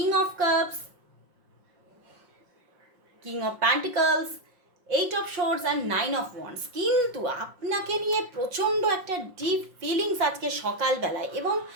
of cups, king of pentacles, 8 of swords and 9 of wands, কিন্তু আপনাকে নিয়ে প্রচণ্ড একটা ডিপ ফিলিংস আজকে সকালবেলায়, এবং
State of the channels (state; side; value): late; left; 5.7 ms